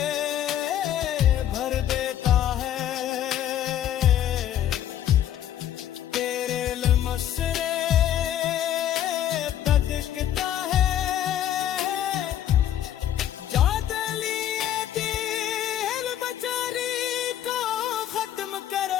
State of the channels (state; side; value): quieter; right; 11.2 dB